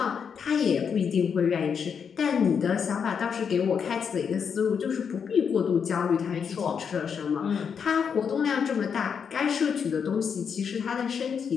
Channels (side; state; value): right; quieter; 6.8 dB